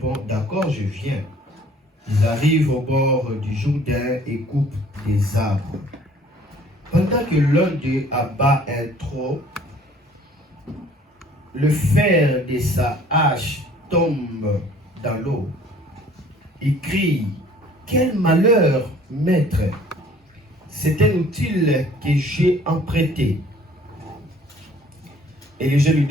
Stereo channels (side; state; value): both; normal; correlation 0.54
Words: d'accord, je viens. Ils arrivent au bord du Jourdain et coupent des arbres. Pendant que l'un d'eux abat un tronc, le fer de sa hache tombe dans l'eau. Il crie, quel malheur, maître! C'est un outil que j'ai emprunté. Élisée lui